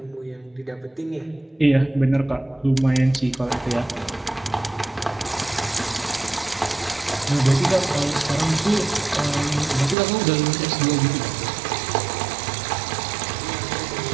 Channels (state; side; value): drops out; left; at 10.0 s